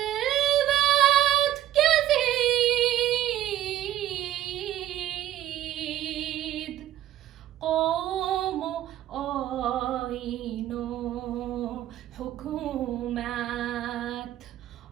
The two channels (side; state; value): left; quieter; 12.9 dB